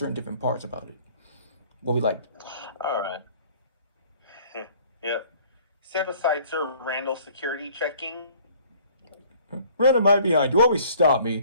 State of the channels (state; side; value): inverted; both; correlation -0.55